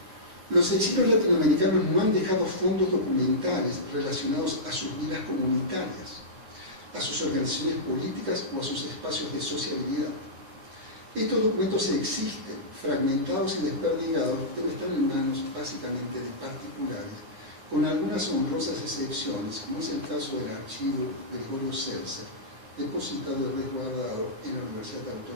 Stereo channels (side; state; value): left; late; 9.4 ms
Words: los exilios latinoamericanos no han dejado fondos documentales relacionados a sus vidas comunitarias, a sus organizaciones políticas o a sus espacios de sociabilidad. Estos documentos existen, fragmentados y desperdigados, pero están en manos básicamente de particulares, con algunas honrosas excepciones, como es el caso del archivo de Gregorio Seltzer, depositado y resguardado en la Universidad